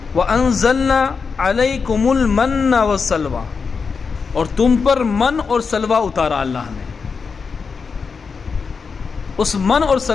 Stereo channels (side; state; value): right; quieter; 5.3 dB